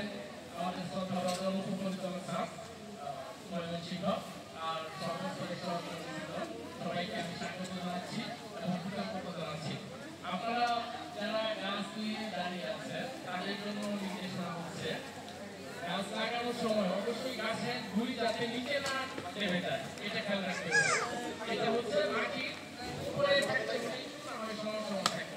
আমাদের শ্রদ্ধাভাজন উপপরিচালক স্যার ময়মনসিংহ। আর সমস্ত সবাইকে আমি স্বাগত জানাচ্ছি এবং কৃতজ্ঞতা জানাচ্ছি। আপনারা যারা গাছ নিয়ে দাঁড়িয়ে আছেন তাদের জন্য নির্দেশনা হচ্ছে, গাছ লাগানোর সময় অবশ্যই গাছের গুঁড়ি যাতে নিচে না নেমে যায়, এটা খেয়াল রাখতে হবে। এটা হচ্ছে মাটির উপরে থাকতে হবে, সময়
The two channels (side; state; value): both; identical; correlation 1.00